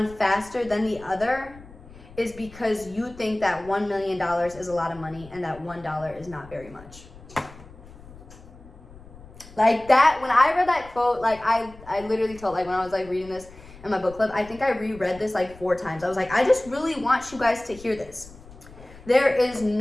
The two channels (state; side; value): noise; left; rumble, 20 dB below the sound